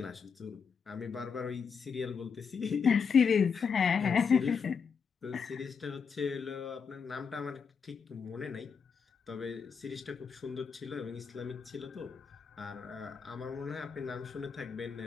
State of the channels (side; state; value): right; quieter; 6.1 dB